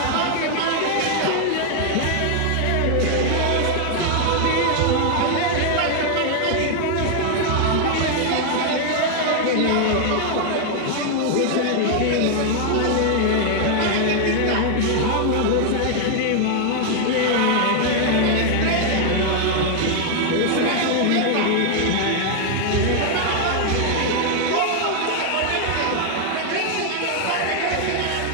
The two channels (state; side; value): different; both; correlation 0.00